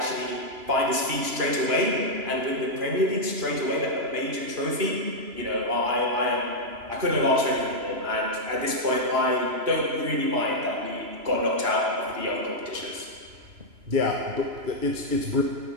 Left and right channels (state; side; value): late; left; 3.0 ms